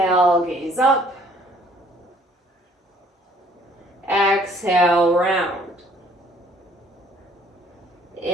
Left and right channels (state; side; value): normal; both; correlation 0.59